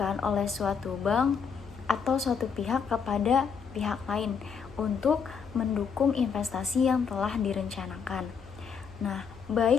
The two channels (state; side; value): quieter; right; 6.3 dB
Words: oleh suatu bank atau suatu pihak kepada pihak lain untuk mendukung investasi yang telah direncanakan. Nah,